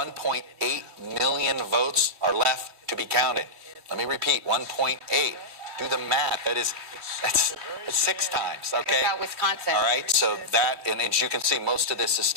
million votes are left to be counted. Let me repeat, 1.8. Do the math. It's 6 times, okay? About Wisconsin. All right, so that, and as you can see, most of this is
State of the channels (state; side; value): late; left; 3.2 ms